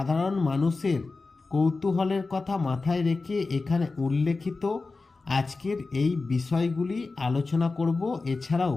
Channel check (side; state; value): right; quieter; 3.8 dB